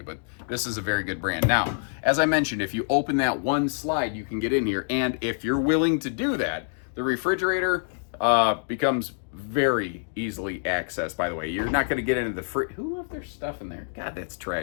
but this is a very good brand. Now, as I mentioned, if you open that one slide, you can get in here. And if you're willing to do that, the refrigerator becomes very easily accessed, by the way. You're not going to get into the fridge. Who left their stuff in there? God, that's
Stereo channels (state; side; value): silent; right; digital silence